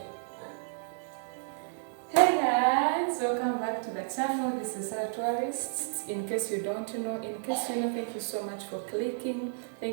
Hey guys, welcome back to the channel. This is Sarah Tourist. In case you don't know, thank you so much for clicking.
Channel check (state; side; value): silent; left; 57 dB below the other